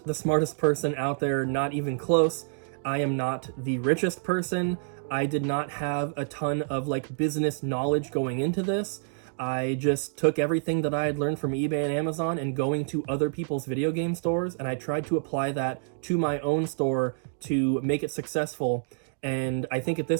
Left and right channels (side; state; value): left; silent; digital silence